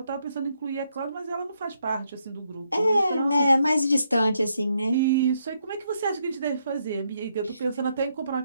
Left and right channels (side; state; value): both; inverted; correlation -0.77